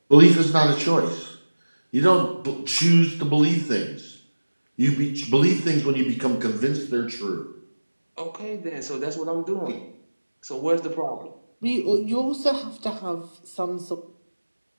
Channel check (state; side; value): inverted; both; correlation -1.00